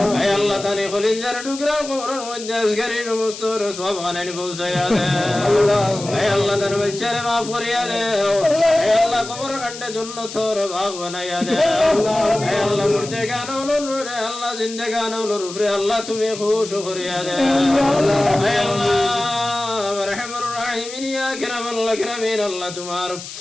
اے اللہ تعالی خلین جر ٹکرا قبر مجاز کری مستور صواب غنن بوسیا دے اے اللہ تن بچر معاف کریا دے اے اللہ قبر خند جنت اور باغ بنایا دے اے اللہ مردگان اور نور اللہ زندگان اور نور اللہ تمہیں خوش کریا دے اے اللہ رحم الراحمین یا اکرم الاکرمین اللہ تمہار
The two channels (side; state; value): left; noise; hiss, 12 dB below the sound